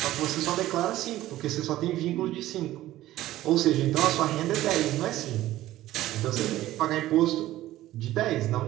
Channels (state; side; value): quieter; left; 15.0 dB